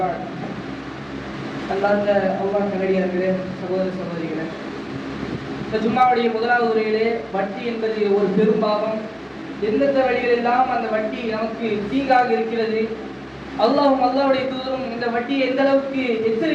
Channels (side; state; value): both; identical; correlation 1.00